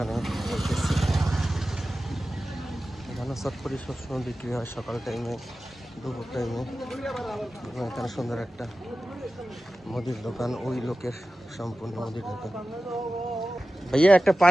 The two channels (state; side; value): normal; both; correlation 0.95